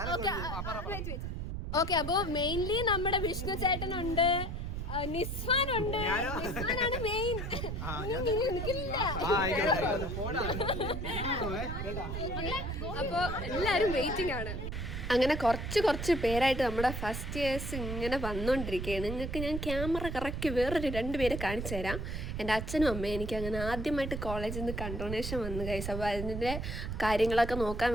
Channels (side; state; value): right; noise; rumble, 4 dB below the sound